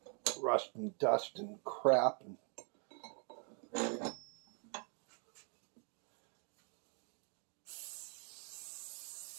rust and dust and crap.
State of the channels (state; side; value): quieter; left; 39.2 dB